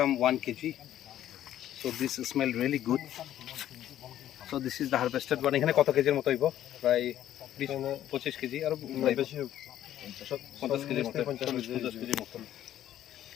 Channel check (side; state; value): right; quieter; 12.0 dB